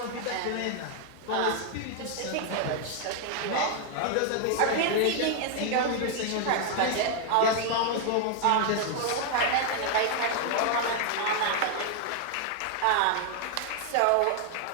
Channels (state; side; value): different; both; correlation 0.00